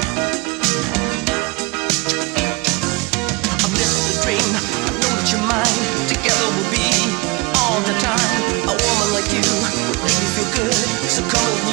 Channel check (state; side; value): quieter; left; 25.5 dB